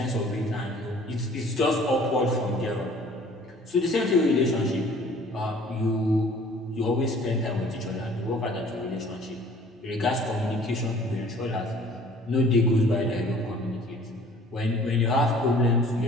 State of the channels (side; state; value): both; normal; correlation 0.52